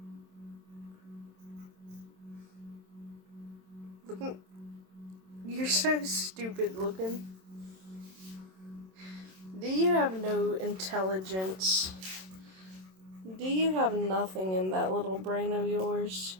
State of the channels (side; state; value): left; late; 27 ms